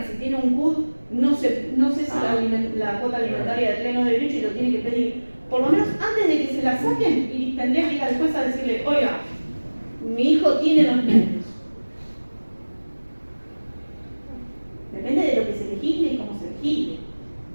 si tiene un CUD, no sé si la cuota alimentaria de pleno derecho y lo tiene que pedir. Por lo menos antes de que se la saquen, y tendría que ir al juez a decirle, oiga, mi hijo tiene 2 niños. Depende de lo que se legisle y cómo se legisle.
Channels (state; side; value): inverted; both; correlation -1.00